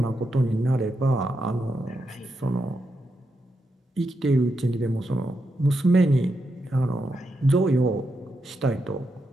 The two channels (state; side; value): normal; both; correlation 0.84